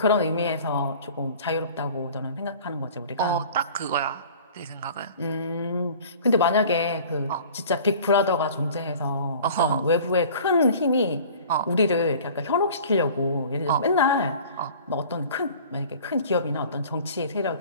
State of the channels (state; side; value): inverted; both; correlation -0.45